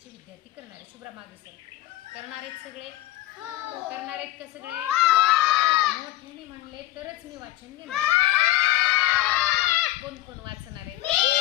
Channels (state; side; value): quieter; right; 15.6 dB